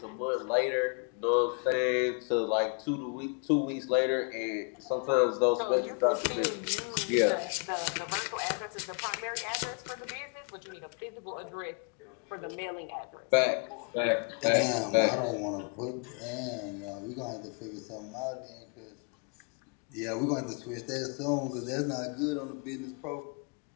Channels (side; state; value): right; quieter; 37.9 dB